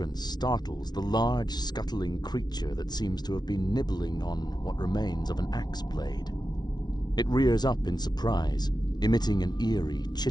startles the large, scuttling creature that seems to have been nibbling on what remains of an axe blade. It rears up in surprise, emitting an eerie,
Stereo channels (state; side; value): late; right; 0.19 ms